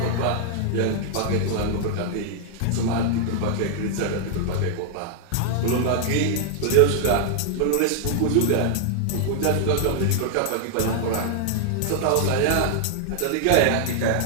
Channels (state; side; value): different; both; correlation 0.00